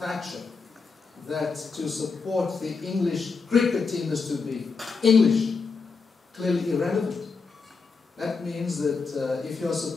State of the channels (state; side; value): quieter; right; 4.8 dB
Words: that to support the English cricket team is to be English, clearly irrelevant. That means that if you're